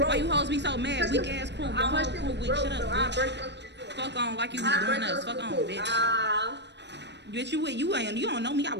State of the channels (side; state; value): left; late; 0.50 ms